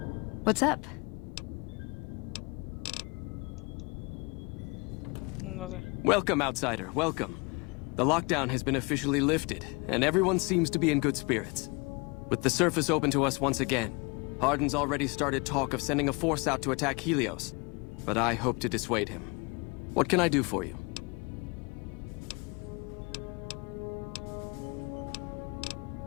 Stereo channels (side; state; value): right; quieter; 29.1 dB